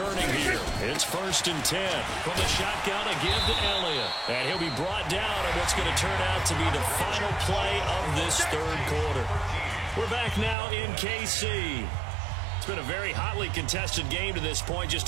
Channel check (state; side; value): drops out; left; at 10.6 s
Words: here. It's 1st and 10. From the shotgun, a give to Elliott. And he'll be brought down on what's going to turn out to be the final play of this 3rd quarter. We're back now in KC. It's been a very hotly contested game to this point. Just